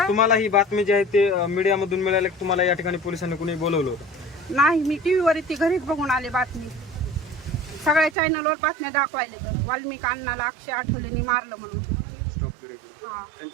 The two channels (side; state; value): left; drops out; at 8.2 s